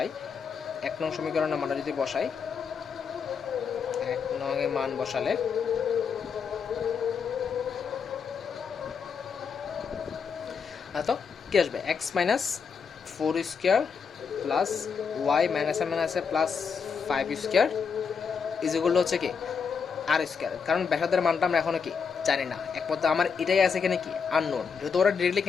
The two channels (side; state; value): right; quieter; 6.1 dB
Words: 1 নং সমীকরণের মানটা যদি বসাই, 1 নং এর মান বসালে তো কি আসবে, x minus 4 square plus y মাইনাসে মাইনাসে +5 স্কোয়ার ইজ ইকুয়াল টু হচ্ছে কি আর স্কোয়ার। কারণ ব্যাসার্ধের মানটা আমরা এখনো কি জানি না, একমাত্র আমার এটাই আছে এখানে কি আননোন। যেহেতু ওরা ডিরেক্টলি